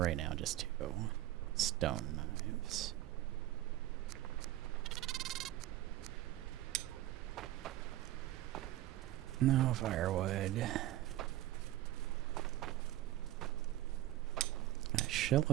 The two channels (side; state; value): left; quieter; 14.8 dB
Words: now, just 2 stone knives. No firewood. Got a